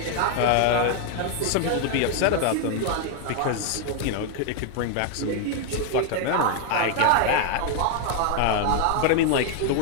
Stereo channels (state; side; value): different; both; correlation 0.00